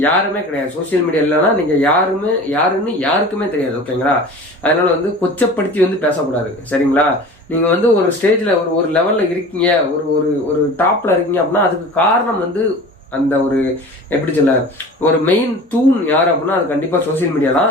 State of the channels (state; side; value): normal; both; correlation 0.38